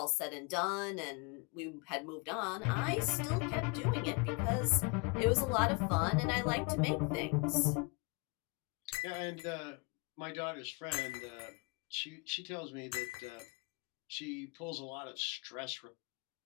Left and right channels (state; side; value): quieter; right; 29.1 dB